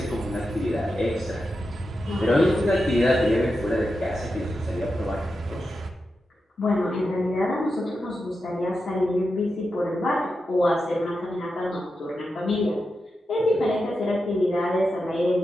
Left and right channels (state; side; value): normal; both; correlation 0.89